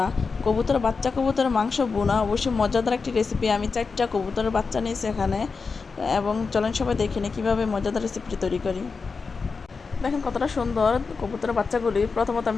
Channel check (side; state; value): right; quieter; 4.8 dB